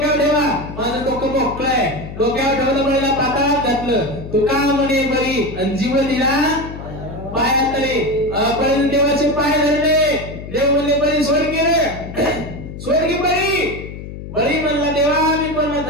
ठेवा, माझं डोकं मोकळंय. डोक्यावर ठेवलं, बळीला पाताळात घातलं. तू का म्हणे बळी, आणि जीव दिला पायात तरी. बळीने देवाचे पाय धरले. देव म्हणले बळी सोड की रे, सोड की बळी. बळी म्हणला देवा मी पण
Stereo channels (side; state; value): left; noise; hum, 11 dB below the sound